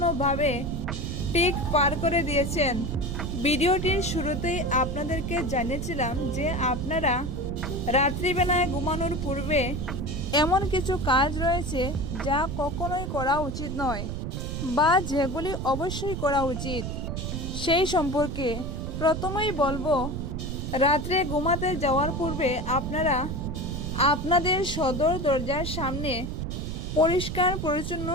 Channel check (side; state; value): right; noise; rumble, 4 dB below the sound